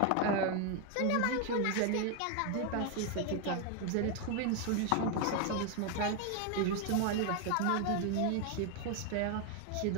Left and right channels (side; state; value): both; different; correlation 0.01